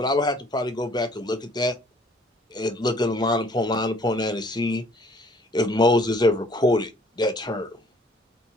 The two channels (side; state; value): both; normal; correlation 0.58